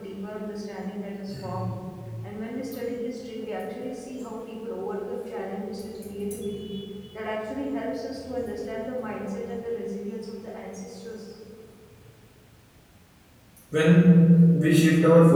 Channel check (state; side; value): identical; both; correlation 1.00